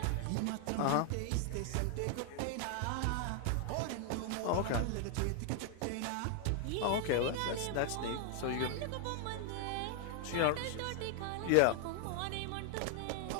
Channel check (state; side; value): different; both; correlation 0.00